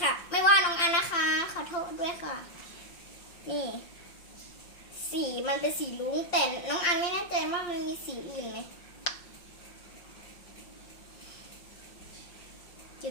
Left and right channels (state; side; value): late; right; 5.6 ms